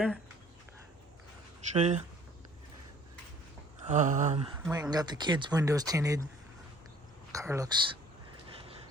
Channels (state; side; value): normal; both; correlation 0.55